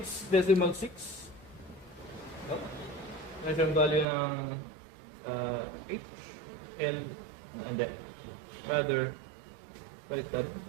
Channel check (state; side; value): drops out; left; at 4.0 s